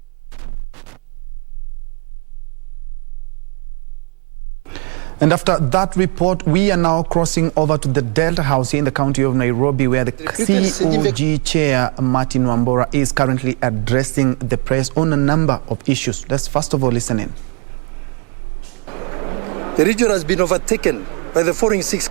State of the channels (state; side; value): quieter; left; 37.1 dB